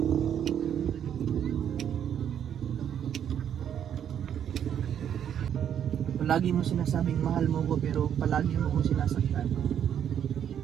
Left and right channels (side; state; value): left; quieter; 9.2 dB